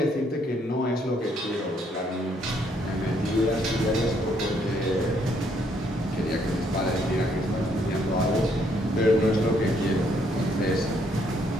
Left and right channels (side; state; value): both; normal; correlation 0.70